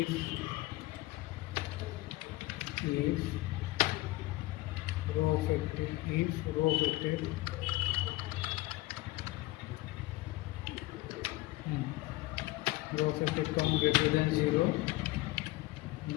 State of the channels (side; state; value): right; quieter; 19.4 dB